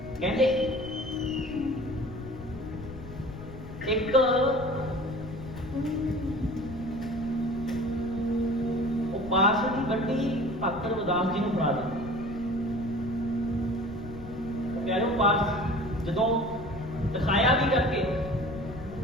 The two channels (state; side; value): noise; left; rumble, 13 dB below the sound